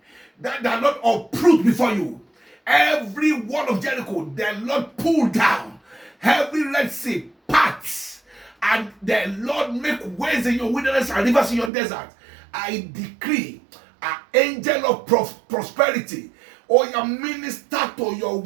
that the Lord uproot before you, every wall of Jericho the Lord pull down, every Red Sea parts, and the Lord make ways in your wilderness and rivers in your desert. I decree an angel of prosperity or your minister to your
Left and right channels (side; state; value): left; drops out; at 11.7 s